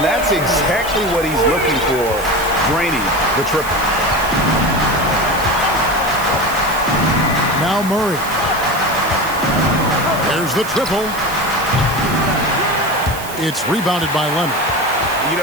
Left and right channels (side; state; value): right; noise; hiss, 13 dB below the sound